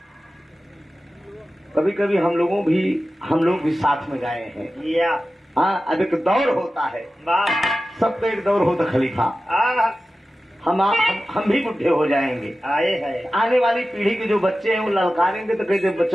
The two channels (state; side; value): normal; both; correlation 0.94